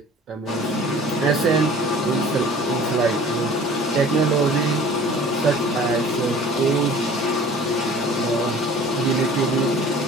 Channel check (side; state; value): both; normal; correlation 0.46